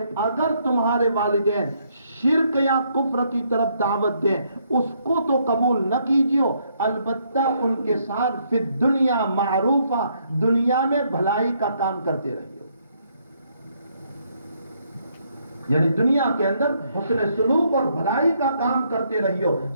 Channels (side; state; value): both; inverted; correlation -0.72